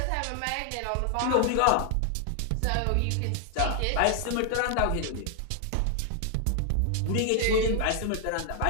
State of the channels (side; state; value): both; different; correlation 0.00